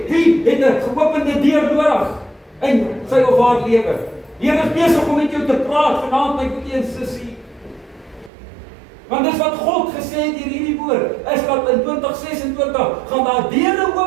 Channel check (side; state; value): left; drops out; at 8.3 s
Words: Wie het 'n geopende deur nodig in sy of haar lewe? Die Here is besig om met jou te praat vanaand, my broer en sussie. Want dis wat God gesê het deur hierdie woord, is dat in 2026 gaan daar deure